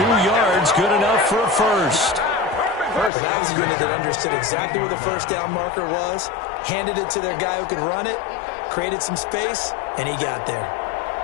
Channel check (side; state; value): right; drops out; at 3.1 s